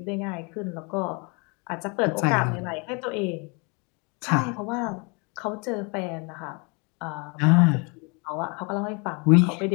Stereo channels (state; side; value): quieter; right; 31.9 dB